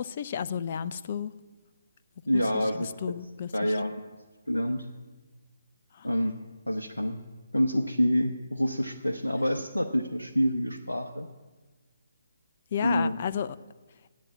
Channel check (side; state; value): both; inverted; correlation -0.93